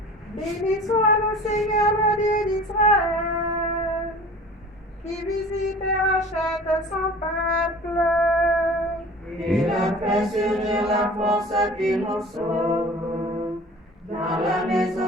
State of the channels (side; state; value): both; normal; correlation 0.42